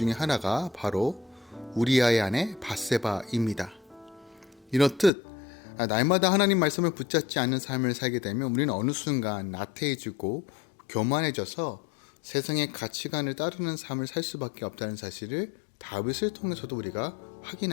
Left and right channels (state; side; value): drops out; right; at 5.1 s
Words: 하나가 바로 우리아의 아내 밧세바입니다. 이렇듯 날마다 하나님 말씀을 붙잡지 않는 삶을 살게 되면 우리는 어느 순간 나태해지고 교만해져서 세상의 가치관을 따르는 삶을 살 수밖에 없다는 사실을 다윗을 통해서도 우리가